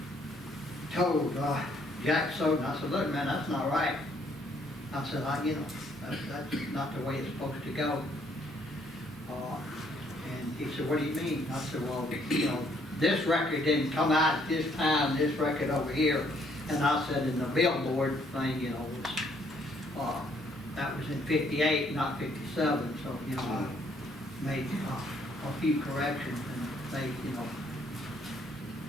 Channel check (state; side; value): normal; both; correlation 0.67